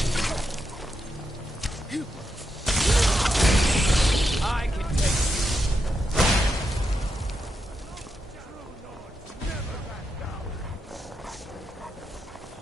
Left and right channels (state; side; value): normal; both; correlation 0.84